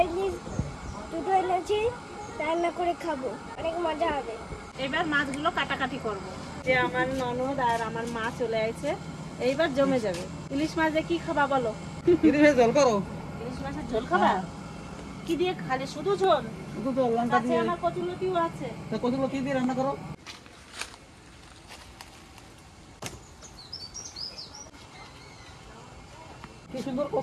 ইলিশ দুটো এনেছি, রান্না করে খাবো, অনেক মজা হবে। এবার মাছগুলো কাটাকাটি করব। যে আমার ননদ আর আমার মা চলে আসছে, এইবার জমে যাবে। ইলিশ মাছ দিয়ে কি খাবা বলো? ইলিশের ঝোল করো। ইলিশ মাছের ঝোল খাবা? কি দিয়ে খালি? শুধু ঝোল? শুধু তো লঙ্কা আছে, দিয়ে। আমার কচুলতিও আছে। তা কতগুলো কি দিয়ে রান্না করো? কি সুন্দর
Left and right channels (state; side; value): identical; both; correlation 1.00